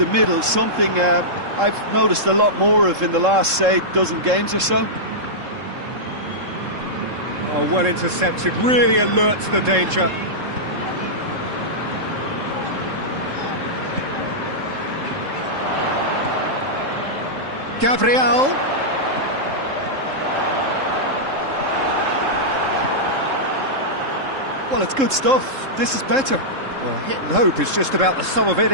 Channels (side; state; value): left; late; 3.7 ms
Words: middle, something I've noticed a lot more of in the last, say, dozen games or so. Oh, well intercepted, really alert to the danger. Gabriel. Well, it's good stuff. This is better. Well, hit and hope is just about the sum of it,